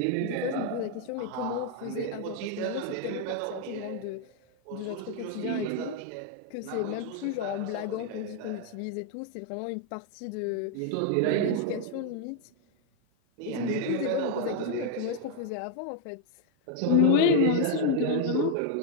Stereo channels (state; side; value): different; both; correlation 0.01